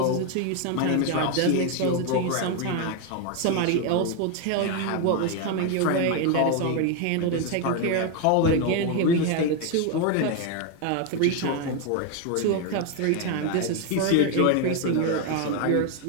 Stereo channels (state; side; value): different; both; correlation 0.01